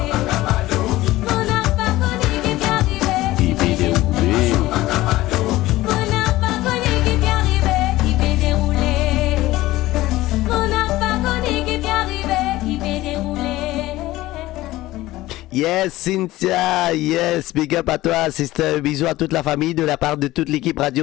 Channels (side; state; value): right; quieter; 17.2 dB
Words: on n'a pas connu qui t'est arrivé. Qui fait dérouler. On n'a pas connu qui t'est arrivé, qui peut dérouler. On n'a pas connu qui t'est arrivé, qui peut dérouler. Yes, Cynthia, yes, big up à toi, sister. Bisous à toute la famille de la part de toute l'équipe